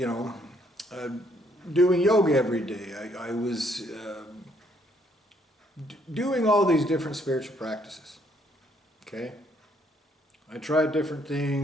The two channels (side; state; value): both; normal; correlation 0.68